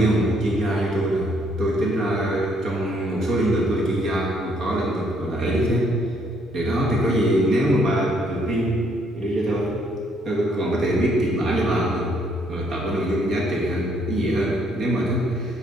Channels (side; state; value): both; normal; correlation 0.68